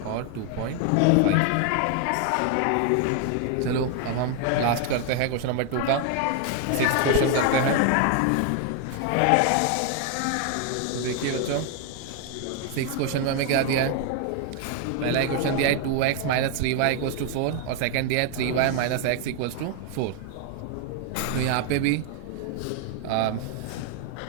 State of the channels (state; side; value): different; both; correlation 0.00